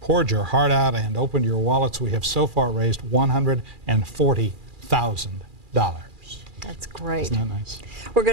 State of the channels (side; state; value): left; late; 2.4 ms